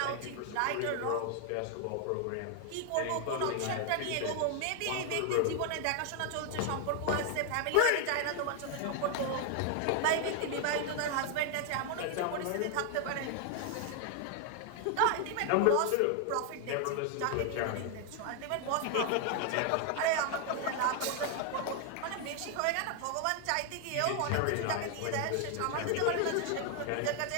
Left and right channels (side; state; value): both; different; correlation 0.00